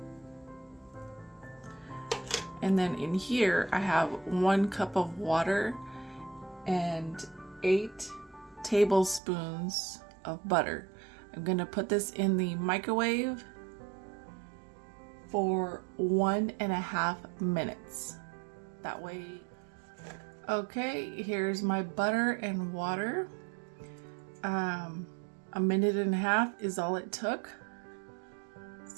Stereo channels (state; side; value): drops out; left; at 9.2 s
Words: And then in here I have 1 cup of water and 8 tablespoons of butter. I'm gonna put this in the microwave for 1.5 minutes. That way. Okay, here's my butter and water. 1.5 minutes is all it took.